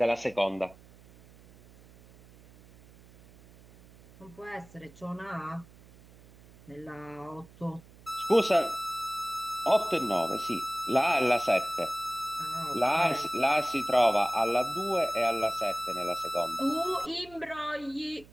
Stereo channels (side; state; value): right; noise; hum, 24 dB below the sound